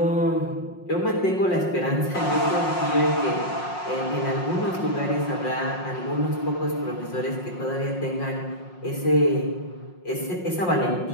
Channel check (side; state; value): right; late; 5.5 ms